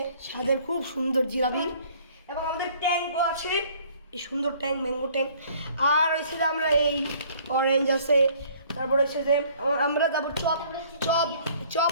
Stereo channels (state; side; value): inverted; both; correlation -0.56